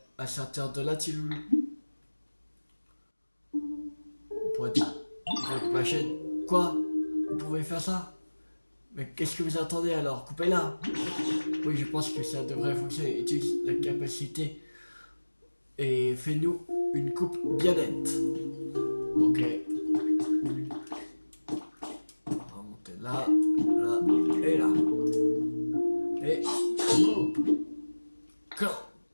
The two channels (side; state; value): both; inverted; correlation -1.00